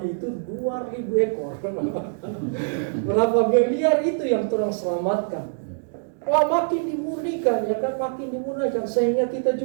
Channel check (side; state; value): left; silent; digital silence